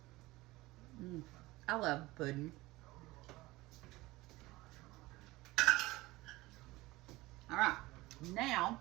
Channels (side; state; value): left; quieter; 19.8 dB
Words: I love pudding. All right, now